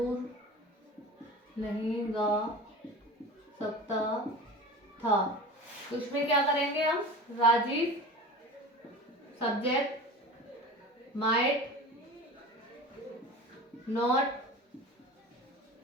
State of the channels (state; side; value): normal; both; correlation 0.34